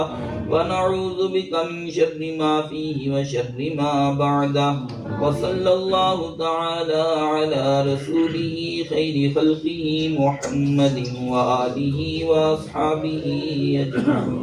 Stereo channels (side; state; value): both; identical; correlation 1.00